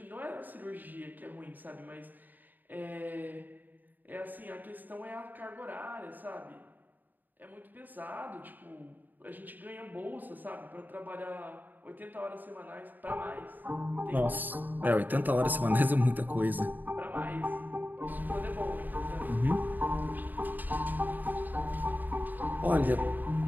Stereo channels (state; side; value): late; left; 0.087 ms